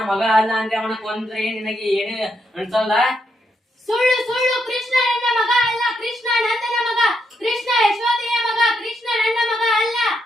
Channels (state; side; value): normal; both; correlation 0.80